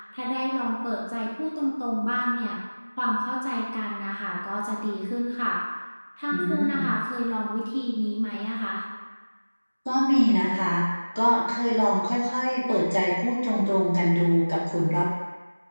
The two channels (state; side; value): inverted; both; correlation -1.00